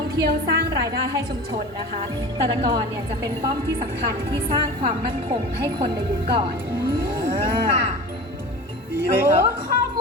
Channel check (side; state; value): both; normal; correlation 0.34